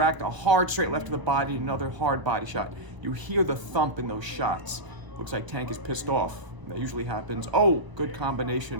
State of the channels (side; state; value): left; late; 1.0 ms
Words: a hard straight left to the body, another hard body shot. You hear the thump in those shots. Looks like Tank is pissed off. That usually happens. Oh, good